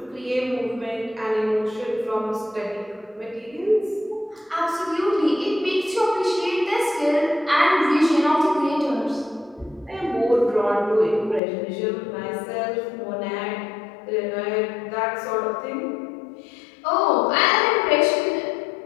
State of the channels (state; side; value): drops out; right; at 11.4 s